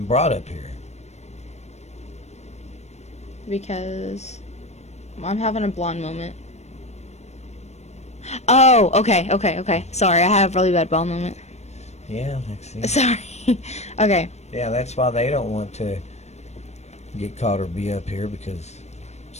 brought up here. Because I'm having a blonde moment. Oh, okay. Sorry, I have a really bad blonde moment. Yeah, Lexi. Sorry. Okay. Yeah, that's why they don't want to get caught or be up here, because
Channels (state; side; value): late; right; 0.32 ms